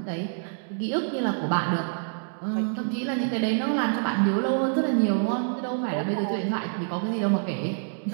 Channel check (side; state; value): left; silent; digital silence